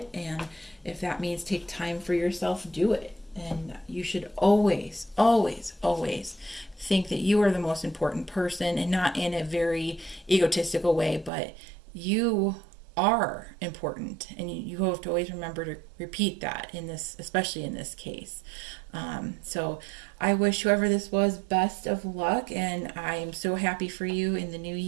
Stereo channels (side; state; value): left; drops out; at 11.3 s